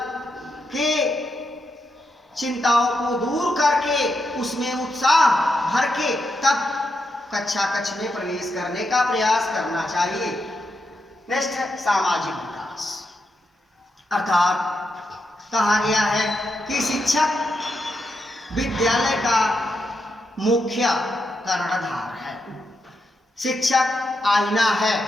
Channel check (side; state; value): both; normal; correlation 0.84